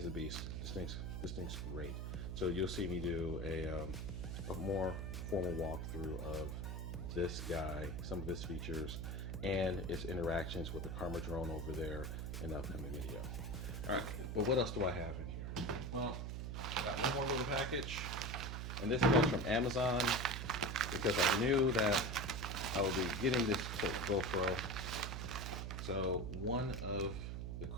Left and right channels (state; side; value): noise; right; hum, 4 dB below the sound